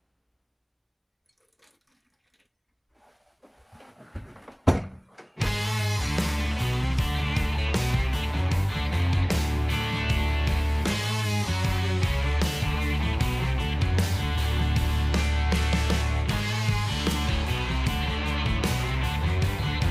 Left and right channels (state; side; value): identical; both; correlation 1.00